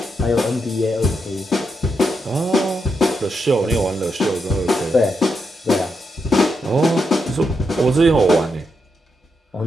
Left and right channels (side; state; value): both; normal; correlation 0.83